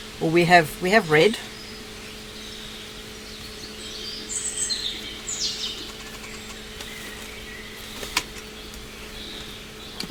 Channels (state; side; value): identical; both; correlation 1.00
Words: Or we have red.